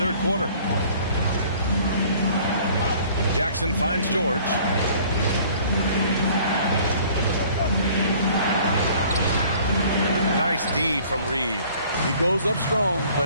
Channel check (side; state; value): both; inverted; correlation -0.53